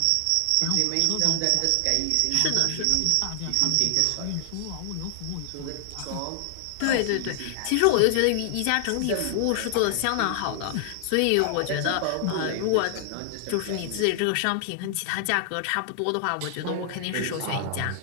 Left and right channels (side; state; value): both; different; correlation 0.00